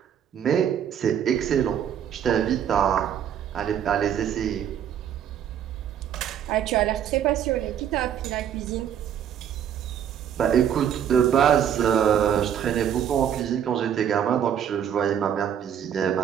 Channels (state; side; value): quieter; left; 9.3 dB